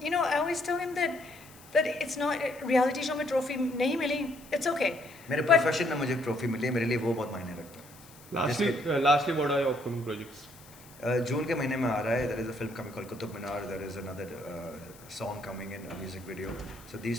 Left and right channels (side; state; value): left; noise; hiss, 22 dB below the sound